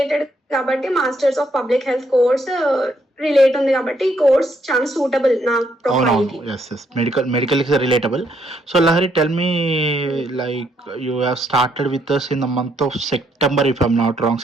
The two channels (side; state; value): both; normal; correlation 0.73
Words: కాబట్టి masters of public health course relate ఉంది కాబట్టి ఈ కోర్స్ చాలా సూటబుల్ నా ప్రొఫైల్ కి. అవునవును. Yes. Medical is relatable. So Lahari, tell me, like you have started with us in the month of September, if I'm not wrong.